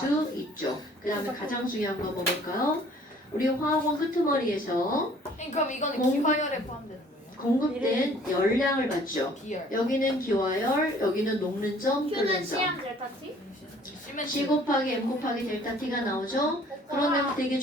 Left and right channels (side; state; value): both; normal; correlation 0.55